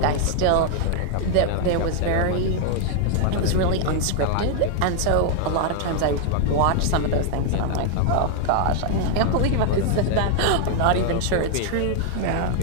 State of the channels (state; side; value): different; both; correlation 0.00